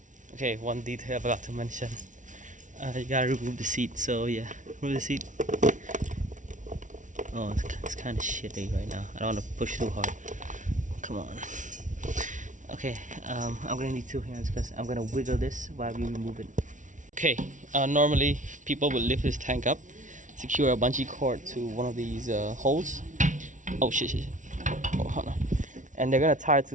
Okay, one detail I forgot to mention. You gotta remove the seat. So yeah, remove the seat. Oh, it's kind of shitty right now. I don't want to push too hard. Come on. Okay, I'm gonna need two hands because I'm gonna wiggle this while we remove it. Okay, normally people would lift this tank up, secure a bungee cord to one of these holes. Oh shit. Oh, hold on. And they're gonna tie it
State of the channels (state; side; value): late; left; 0.37 ms